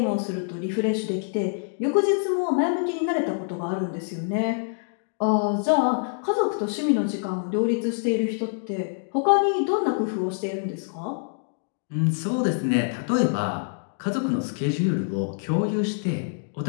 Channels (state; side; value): silent; right; digital silence